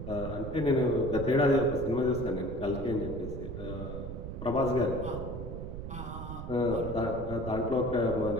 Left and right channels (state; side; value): noise; right; rumble, 7 dB below the sound